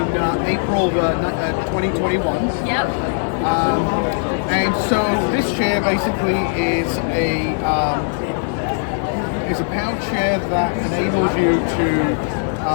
April 2021. Yep. And so this chair basically is a power chair that enables you to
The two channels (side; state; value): right; silent; digital silence